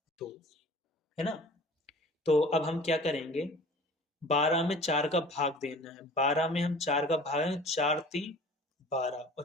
2, है ना। तो अब हम क्या करेंगे, 12 में 4 का भाग देना है, 12 में हम 4 का भाग है, 4 3 12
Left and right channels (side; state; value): both; normal; correlation 0.45